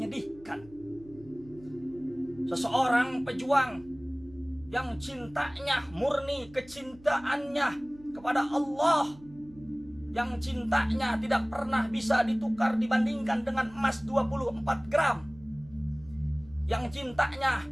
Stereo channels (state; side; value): noise; right; hum, 23 dB below the sound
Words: seseorang pejuang yang cintanya murni, kecintaannya kepada Allah, yang cintanya tidak pernah bisa ditukar dibandingkan dengan emas 24 gram, yang cintanya